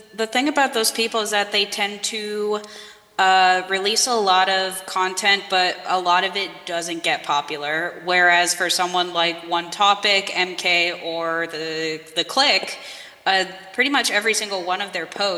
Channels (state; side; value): identical; both; correlation 1.00